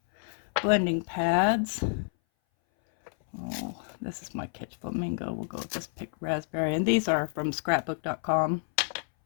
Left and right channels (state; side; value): silent; right; 58 dB below the other